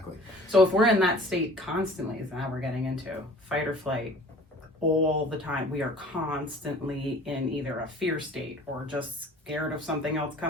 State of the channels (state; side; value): normal; both; correlation 0.48